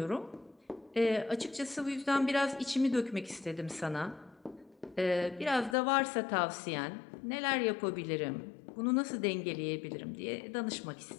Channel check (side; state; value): right; drops out; at 5.8 s